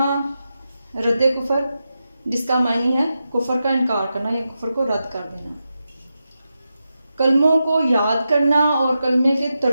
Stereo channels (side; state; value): both; inverted; correlation -0.89